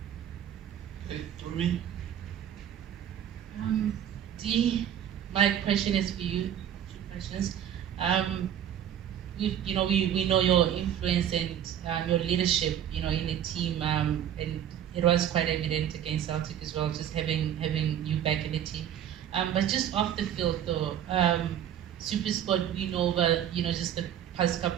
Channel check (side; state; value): left; quieter; 10.2 dB